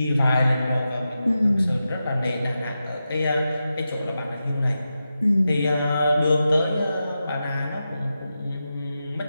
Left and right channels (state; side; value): inverted; both; correlation -0.90